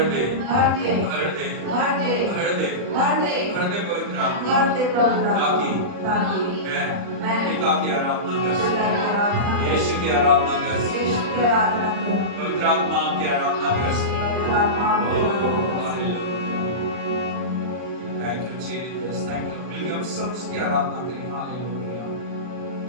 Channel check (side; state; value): left; late; 39 ms